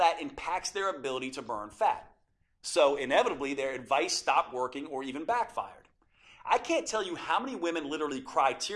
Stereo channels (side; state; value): both; identical; correlation 1.00